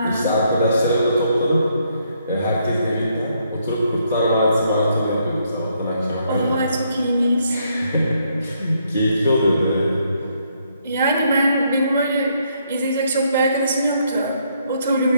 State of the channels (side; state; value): both; inverted; correlation -0.73